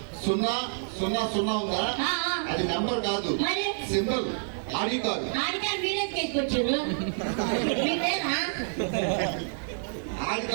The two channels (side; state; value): left; silent; digital silence